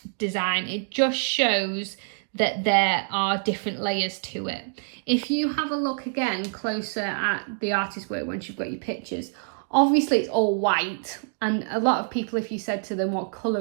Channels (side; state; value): left; silent; digital silence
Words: design. It just shows that there are different layers to it. If you have a look again closer at the artist work once you've got your pictures, obviously it's all white, and a lot of people, if you said to them what